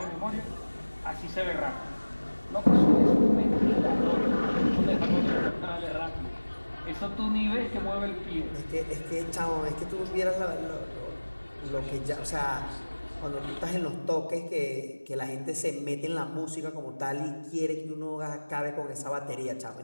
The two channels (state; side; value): inverted; both; correlation -1.00